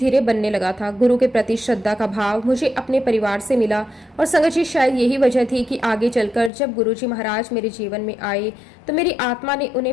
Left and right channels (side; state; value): right; drops out; at 6.5 s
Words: बनने लगा था। गुरु के प्रति श्रद्धा का भाव मुझे अपने परिवार से मिला। और संगत जी, शायद यही वजह थी कि आगे चलकर जब गुरुजी महाराज मेरे जीवन में आए तो मेरी आत्मा ने